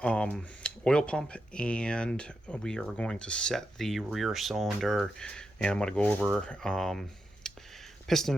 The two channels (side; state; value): both; normal; correlation 0.86